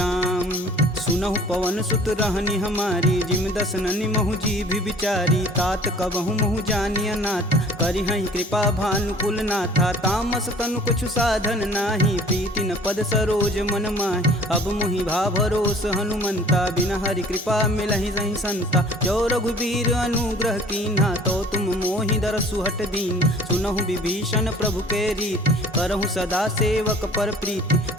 सुनहु पवन सुत रहनी हमारी जिम दसननि महु जीभ विचारी। तात कबहु महु जानिय नाथ करिहहि कृपा भानुकुल नाथा। तामस तनु कुछु साधन नाही प्रीति न पद सरोज मन माहि। अब मुहि भा भरोस हनुमंता बिना हरि कृपा मिलहि सही संता। जो रघुबीर अनुग्रह कीन्हा तो तुम मोहि दरसु हट दीन। सुनहु विभीषण प्रभु के रीत करहु सदा सेवक पर प्रीति।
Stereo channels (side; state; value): both; normal; correlation 0.50